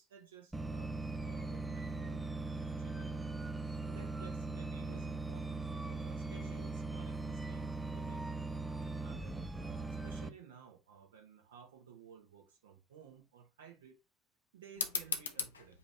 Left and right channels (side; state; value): both; normal; correlation 0.61